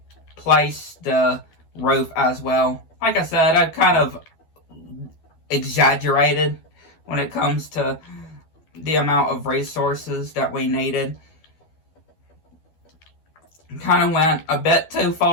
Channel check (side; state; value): right; late; 12 ms